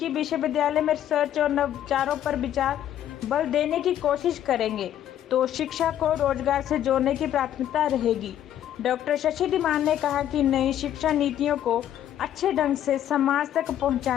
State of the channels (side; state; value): right; quieter; 11.1 dB